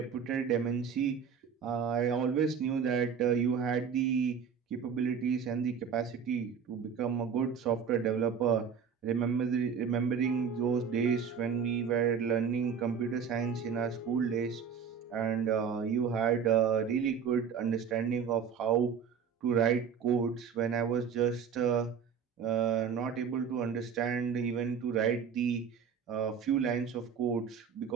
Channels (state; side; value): quieter; left; 6.9 dB